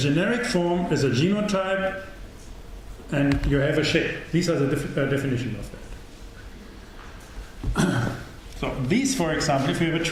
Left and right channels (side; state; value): both; identical; correlation 1.00